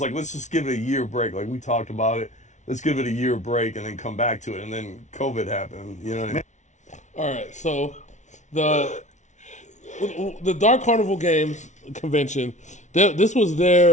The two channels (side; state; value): right; late; 0.35 ms